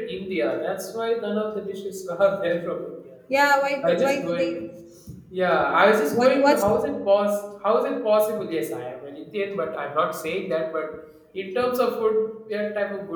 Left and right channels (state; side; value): identical; both; correlation 1.00